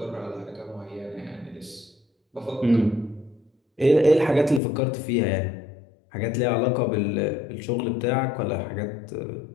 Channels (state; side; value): drops out; right; at 4.6 s